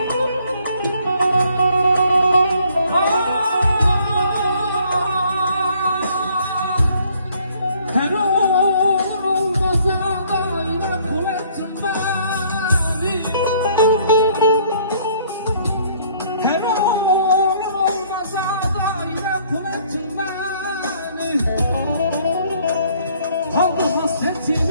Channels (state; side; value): inverted; both; correlation -0.62